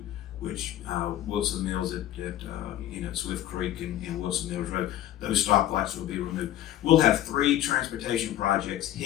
which Wilson Mills at Swift Creek and Wilson Mills Road, those stoplights will be removed. We'll have 3 transportation projects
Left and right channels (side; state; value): right; quieter; 13.1 dB